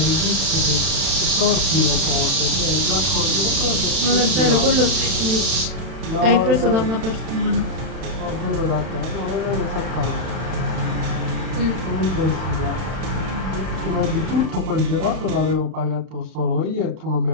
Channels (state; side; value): late; left; 31 ms